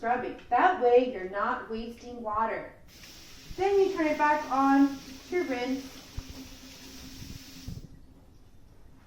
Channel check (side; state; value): both; identical; correlation 1.00